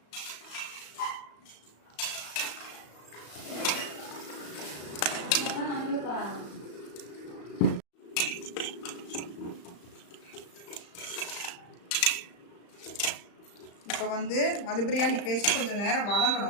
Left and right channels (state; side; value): late; right; 35 ms